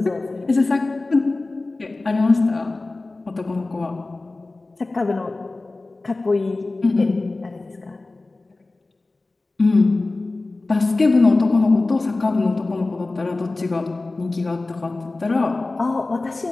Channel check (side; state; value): right; quieter; 3.2 dB